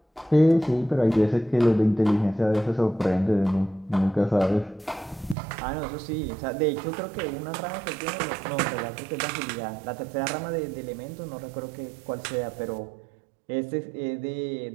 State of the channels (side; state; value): left; drops out; at 5.4 s